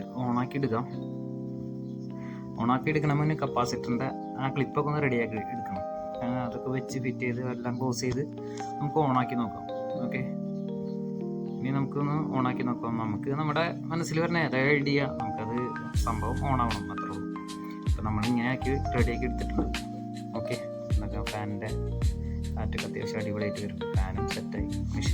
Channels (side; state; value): both; identical; correlation 1.00